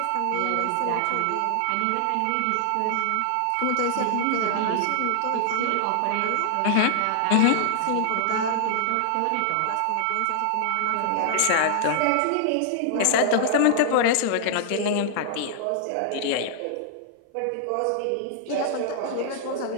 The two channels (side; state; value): both; different; correlation -0.01